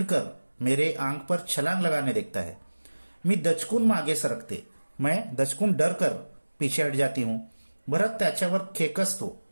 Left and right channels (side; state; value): both; inverted; correlation -1.00